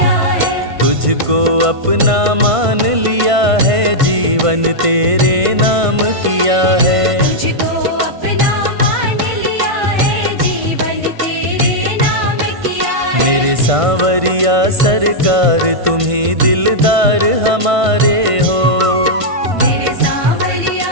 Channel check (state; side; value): late; left; 1.5 ms